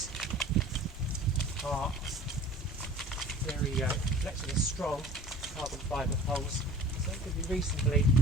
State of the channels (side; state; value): both; normal; correlation 0.44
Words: are very flexible, strong carbon fibre poles, so it can be reasonably